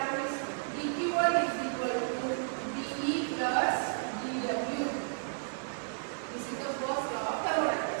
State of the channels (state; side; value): silent; left; digital silence